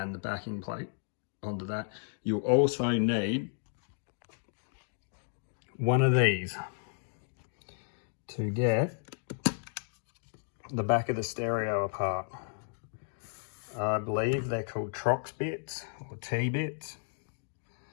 the backing plate onto that. You'll also need one of these to get the back of the stereo apart. I believe they're called Trox bits or T-bits,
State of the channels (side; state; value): right; silent; digital silence